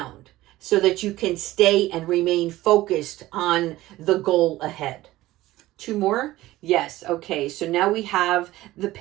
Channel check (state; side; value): quieter; left; 16.8 dB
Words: so that you can stay and remain focused on the goal ahead. Two more? Yes. Okay. So now we have the